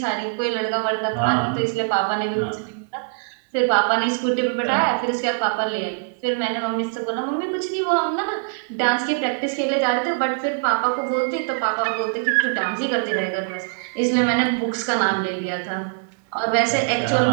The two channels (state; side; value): silent; left; 63 dB below the other